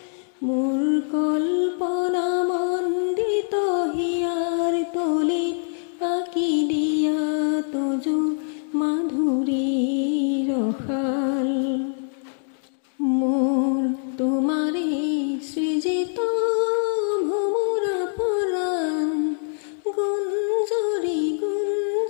মোৰ কল্পনা মন্দিত হিয়াৰ তলিত আঁকি দিয়া তজু মাধুৰীৰ শাল। মোৰ তোমাৰে সৃজিত ভোমোৰা পৰাণ গুঞ্জৰি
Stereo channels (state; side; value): silent; right; digital silence